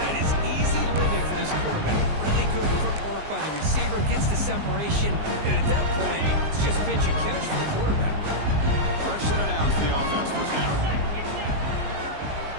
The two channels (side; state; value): left; late; 19 ms